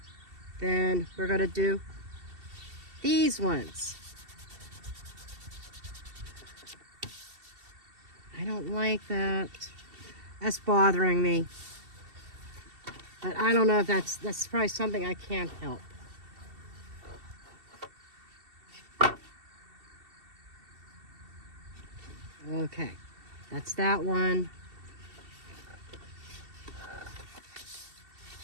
then we're going to do these ones. I don't like that. That's bothering me. But I don't know if that's probably something I can't help. Okay, that's that one.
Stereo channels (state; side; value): late; left; 2.7 ms